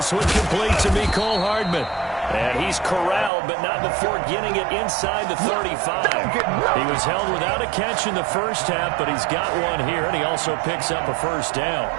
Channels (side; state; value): left; drops out; at 3.3 s